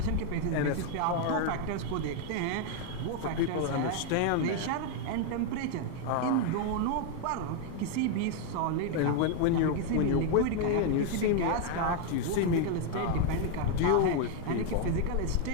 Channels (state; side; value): different; both; correlation 0.00